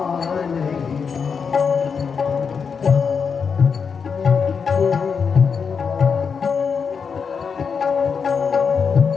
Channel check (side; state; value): right; quieter; 6.0 dB